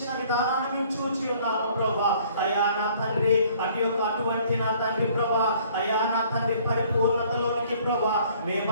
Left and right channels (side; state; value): both; inverted; correlation -0.57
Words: విధానాన్ని మేము చూచి ఉన్నాము ప్రభా అయా నా తండ్రి అటువంటి నా తండ్రి ప్రభా అయా నా తండ్రి పరిపూర్ణతలోనికి ప్రభా